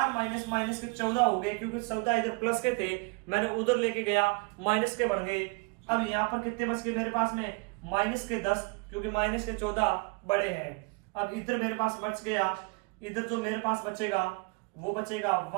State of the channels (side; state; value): left; quieter; 30.0 dB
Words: माइनस माइनस के 14 हो गए, क्योंकि 14 इधर प्लस के थे, मैंने उधर लेके गया, माइनस के बन गए। अब यहाँ पर कितने बच गए मेरे पास में, माइनस के 10, क्योंकि माइनस के 14 बड़े हैं। अब इधर मेरे पास बच गया, इधर जो मेरे पास बचेगा वो बचेगा